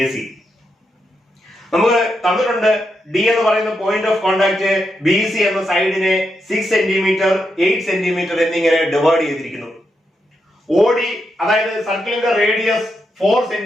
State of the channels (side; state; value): both; normal; correlation 0.83